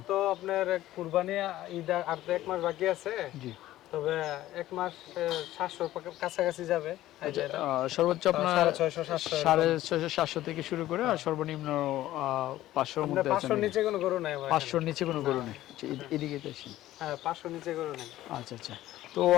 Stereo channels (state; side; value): quieter; right; 14.7 dB